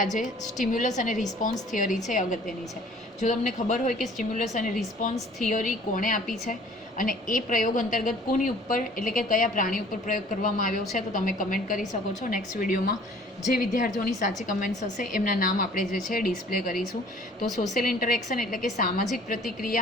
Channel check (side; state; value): both; normal; correlation 0.52